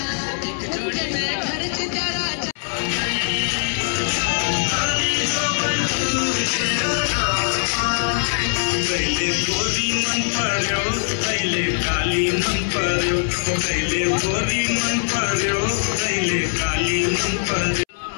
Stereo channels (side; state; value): right; silent; 65 dB below the other